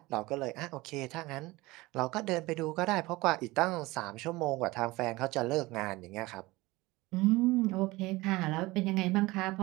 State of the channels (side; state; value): left; quieter; 20.7 dB